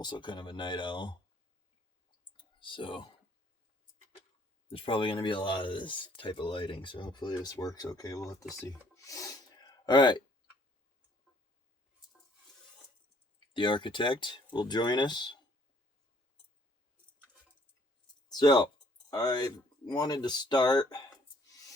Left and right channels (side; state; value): both; normal; correlation 0.62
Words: kind of a night owl. So there's probably going to be a lot of this type of lighting, so hopefully this works okay. We'll have to see. Alright. The architect will join us. So, I wanted to start